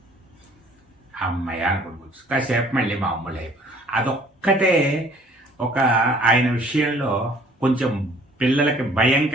అమ్మాయి అనుకుంటు కాసేపు మళ్ళీ మామూలు అయిపోయి. అదొక్కటే ఒక ఆయన విషయంలో కొంచెం పిల్లలకి భయం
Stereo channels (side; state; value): both; normal; correlation 0.56